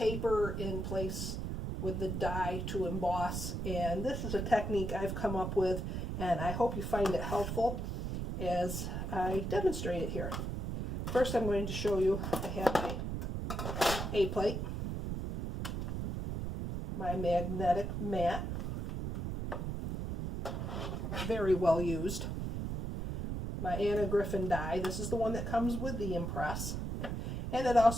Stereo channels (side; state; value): right; noise; rumble, 3 dB below the sound